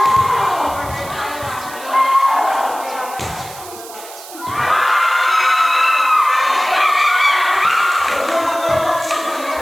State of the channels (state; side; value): noise; right; hiss, 16 dB below the sound